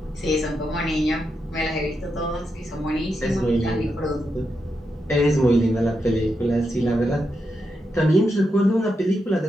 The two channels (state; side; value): normal; both; correlation 0.85